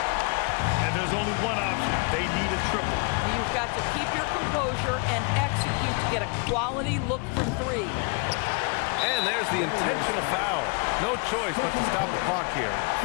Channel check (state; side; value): quieter; right; 32.5 dB